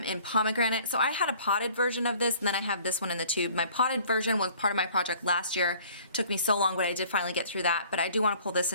in Pomegranate. So I had a potted version of this, and then I have this one in the tube. My potted version was part of my project last year. It took me so long, but I did finally get through that. But I do want to pull this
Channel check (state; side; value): inverted; both; correlation -0.53